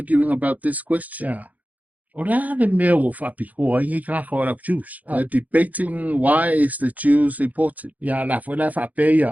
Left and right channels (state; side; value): late; left; 0.078 ms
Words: about this question. Yeah. O la le mea o whapi hoa ingi ka hoa la Jews. They're debating why is the Jews important. Ya la fo la whape